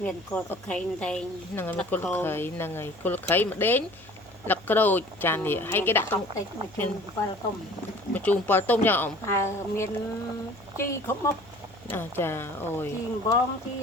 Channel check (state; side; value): noise; left; hum, 25 dB below the sound